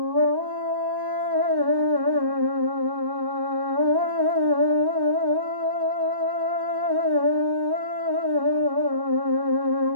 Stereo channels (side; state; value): left; late; 1.1 ms